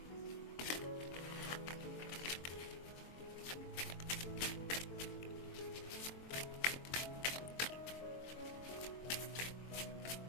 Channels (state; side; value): late; right; 23 ms